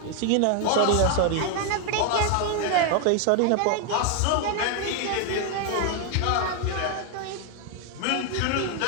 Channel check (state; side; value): different; both; correlation 0.01